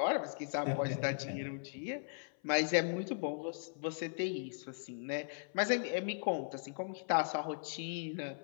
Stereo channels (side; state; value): right; silent; 52 dB below the other